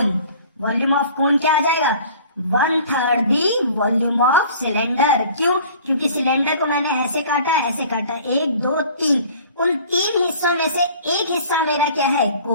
Volume of कोन क्या आ जाएगा? One third the volume of cylinder. क्यों? क्योंकि सिलेंडर को मैंने ऐसे काटा, ऐसे काटा, एक दो तीन, उन तीन हिस्सों में से एक हिस्सा मेरा क्या है?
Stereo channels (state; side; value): inverted; both; correlation -0.48